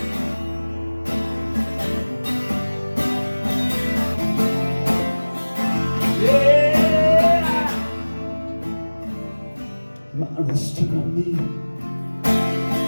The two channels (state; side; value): inverted; both; correlation -1.00